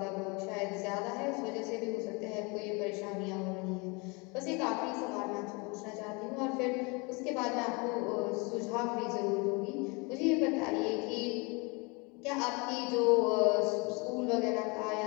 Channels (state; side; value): quieter; right; 29.1 dB